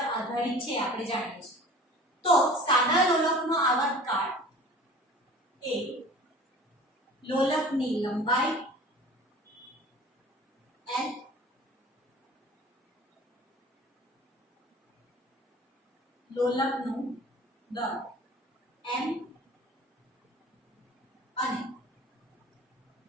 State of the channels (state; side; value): normal; both; correlation 0.44